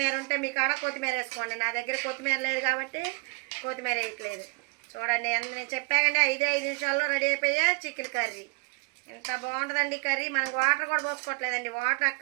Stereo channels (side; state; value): left; quieter; 32.7 dB